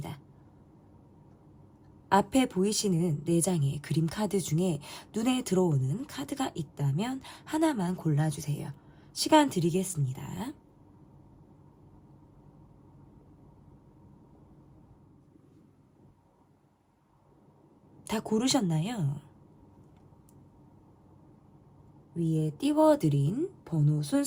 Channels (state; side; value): identical; both; correlation 1.00